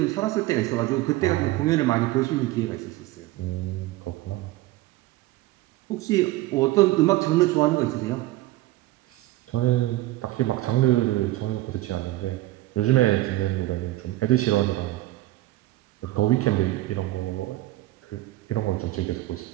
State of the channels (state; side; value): quieter; left; 17.5 dB